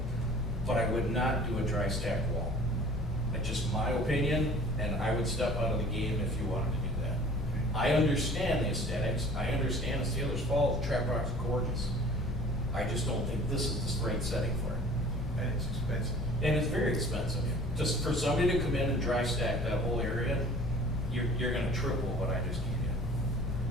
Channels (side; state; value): both; normal; correlation 0.47